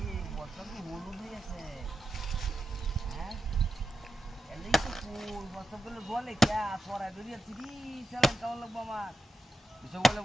এই বছর কি হলুদ হয়ে আছে হ্যাঁ এলেই তো ফুল বছর গুলো বলে কে সোরা দরিয়া তিরি চালান কেমন লাগবো আমার এসব বলে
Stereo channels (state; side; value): normal; both; correlation 0.88